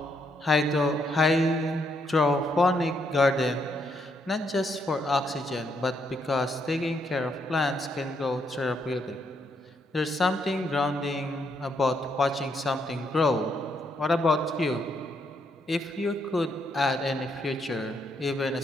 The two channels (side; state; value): both; normal; correlation 0.75